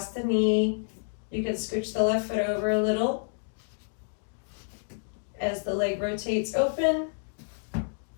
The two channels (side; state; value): right; silent; digital silence